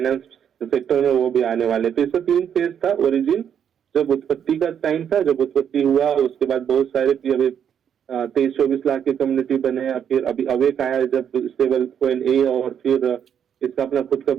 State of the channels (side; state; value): left; quieter; 8.5 dB